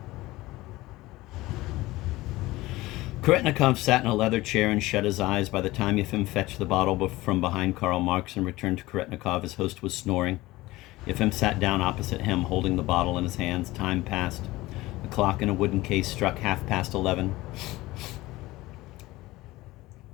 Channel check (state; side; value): quieter; right; 18.9 dB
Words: Koretnikov sat in a leather chair and shut his eyes. By the time Yefim fetched the bottle from behind Karl Marx and returned to Koretnikov, his host was snoring. Yefim sat down opposite him, holding the bottle in his hands. Time passed. A clock in a wooden case struck 11:30.